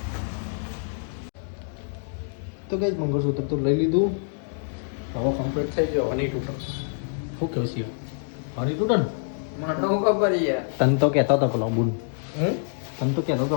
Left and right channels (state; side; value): silent; right; digital silence